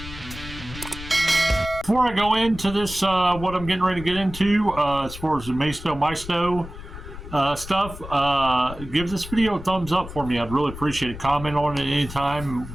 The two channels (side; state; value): left; noise; rumble, 12 dB below the sound